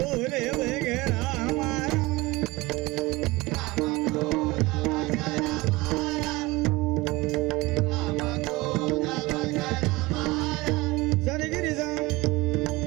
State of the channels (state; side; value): quieter; left; 21.8 dB